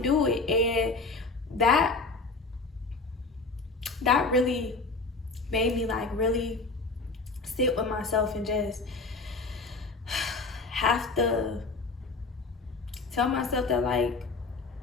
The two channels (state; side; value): quieter; right; 3.8 dB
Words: do it. And that really made me like really sit with myself and just have to tell myself that like,